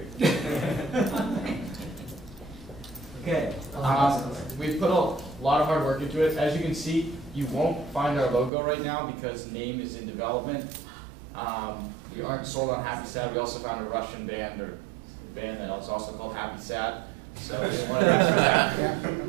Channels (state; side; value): drops out; left; at 8.5 s